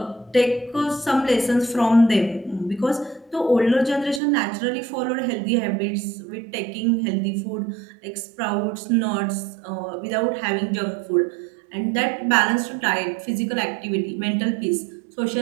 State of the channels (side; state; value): left; drops out; at 4.2 s